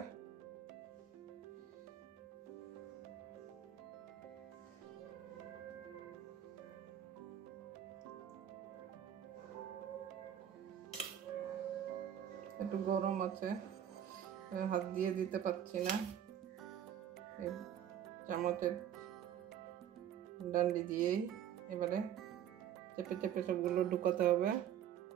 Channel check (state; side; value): quieter; left; 10.1 dB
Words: একটু গরম আছে, হাত দিয়ে দিতে পারছি না। এই চামচের ডান্ডি দিয়েই এবারে চেপে চেপে সবগুলো ঢুকাতে হবে